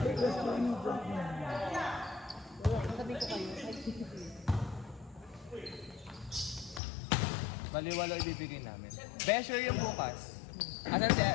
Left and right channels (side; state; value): right; drops out; at 6.8 s